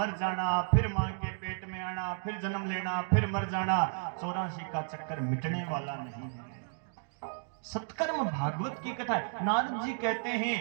जाना, फिर मां के पेट में आना, फिर जन्म लेना, फिर मर जाना, 84 का चक्कर मिटने वाला नहीं है। सत्कर्म भागवत की कथा है। नारद जी कहते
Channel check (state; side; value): silent; left; digital silence